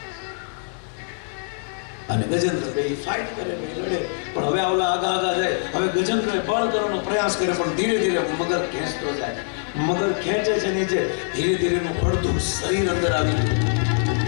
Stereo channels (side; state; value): right; silent; digital silence